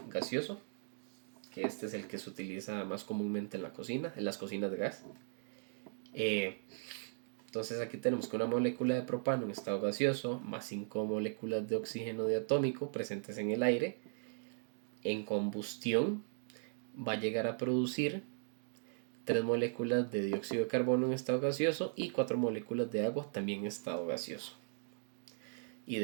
gaseoso, que este es el que se utiliza más comúnmente en la cocina, en las cocinas de gas. Entonces aquí tenemos que una molécula de propano en estado gaseoso más 5 moléculas de oxígeno diatómico presentes en el aire, en combustión va a llegar a producir 3 moléculas de dióxido de carbono en estado gaseoso y 4 moléculas de agua también en estado gaseoso. Y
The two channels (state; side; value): silent; left; digital silence